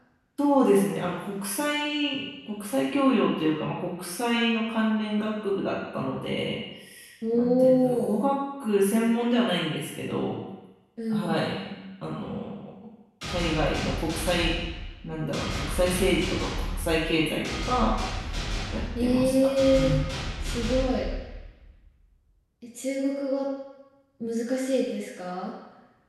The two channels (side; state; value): both; identical; correlation 1.00